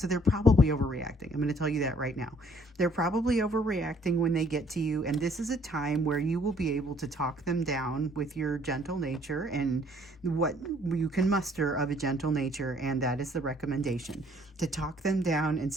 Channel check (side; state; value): both; normal; correlation 0.61